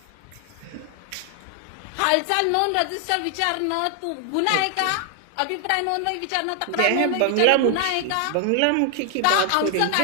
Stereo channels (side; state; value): both; different; correlation 0.00